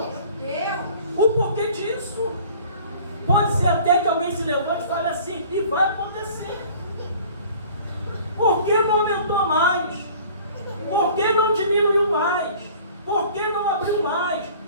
O porquê disso. Pode ser até que alguém se levante e fale assim, e vai acontecer. Por que não aumentou mais? Por que não diminuiu mais? Por que não abriu mais?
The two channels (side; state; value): both; inverted; correlation -0.48